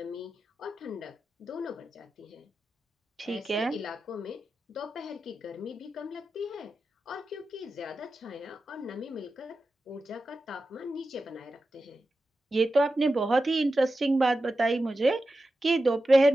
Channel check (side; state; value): both; normal; correlation 0.92